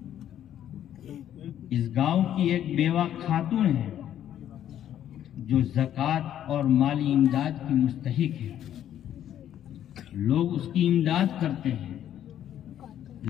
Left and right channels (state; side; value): quieter; right; 10.9 dB